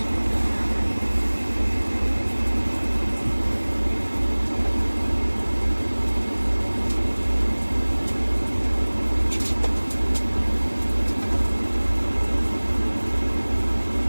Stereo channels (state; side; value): inverted; both; correlation -1.00